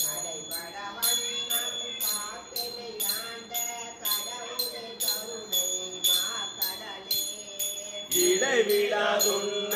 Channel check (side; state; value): both; identical; correlation 1.00